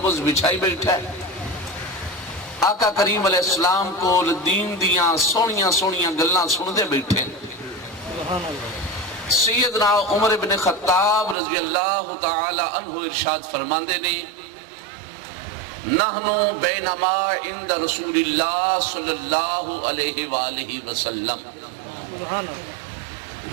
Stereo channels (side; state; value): left; drops out; at 11.4 s